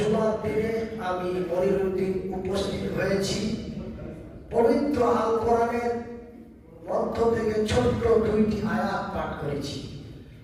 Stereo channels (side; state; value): both; identical; correlation 1.00